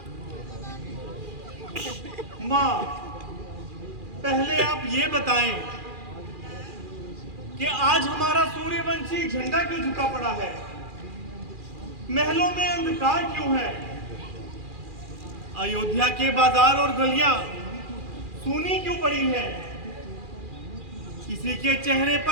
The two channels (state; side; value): late; left; 2.4 ms